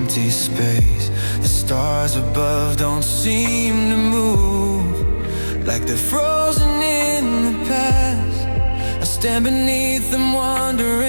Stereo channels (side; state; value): both; inverted; correlation -1.00